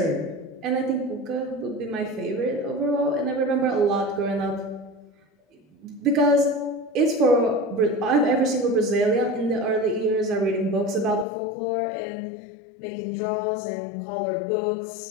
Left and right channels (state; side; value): drops out; right; at 11.2 s